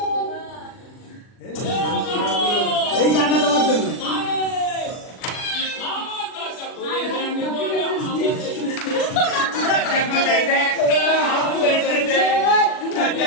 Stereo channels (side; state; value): right; late; 39 ms